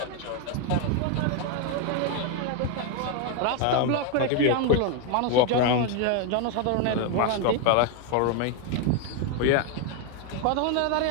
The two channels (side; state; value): both; different; correlation 0.01